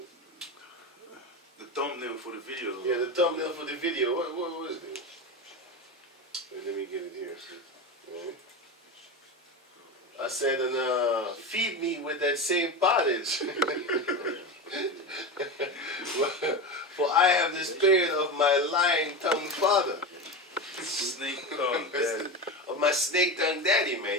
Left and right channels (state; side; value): normal; both; correlation 0.21